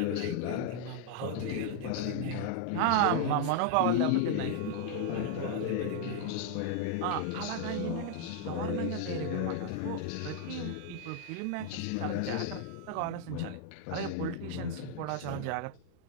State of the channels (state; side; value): different; both; correlation 0.00